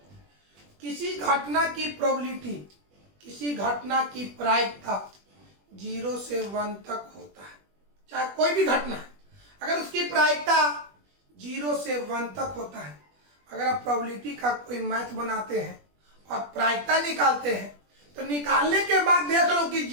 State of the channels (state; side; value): late; left; 20 ms